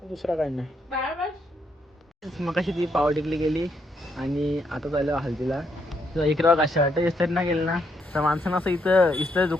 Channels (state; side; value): normal; both; correlation 0.76